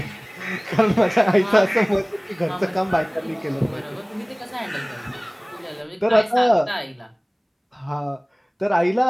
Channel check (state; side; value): identical; both; correlation 1.00